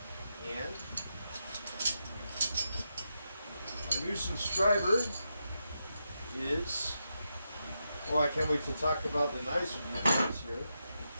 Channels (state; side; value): inverted; both; correlation -0.86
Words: and our new subscriber is, I can't wait to talk about the knives with you guys here.